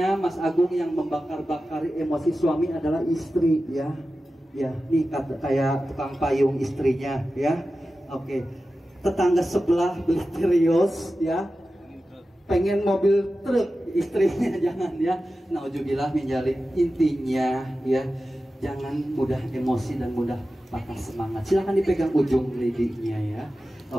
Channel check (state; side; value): normal; both; correlation 0.94